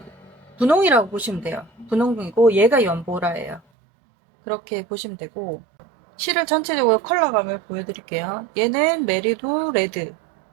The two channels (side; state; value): left; drops out; at 3.6 s